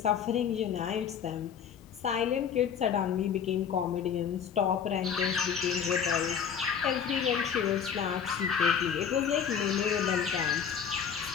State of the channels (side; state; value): right; quieter; 7.6 dB